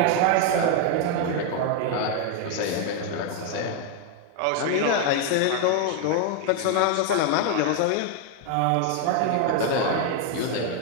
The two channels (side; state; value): both; different; correlation 0.00